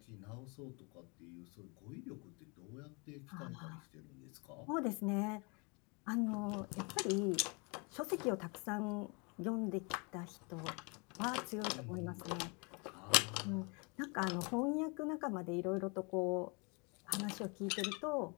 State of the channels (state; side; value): quieter; right; 31.8 dB